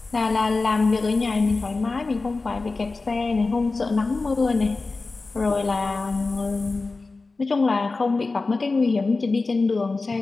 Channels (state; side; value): quieter; right; 3.7 dB